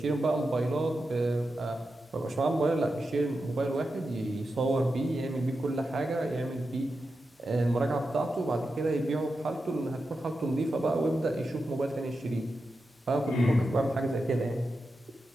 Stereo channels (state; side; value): normal; both; correlation 0.89